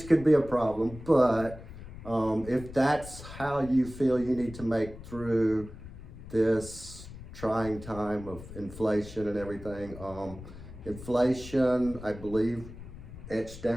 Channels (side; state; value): left; noise; rumble, 14 dB below the sound